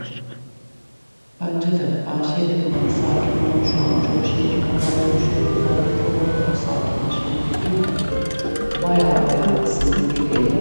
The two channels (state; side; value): inverted; both; correlation -1.00